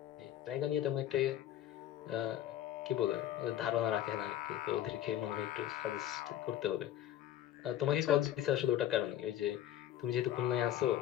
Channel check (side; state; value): right; quieter; 12.1 dB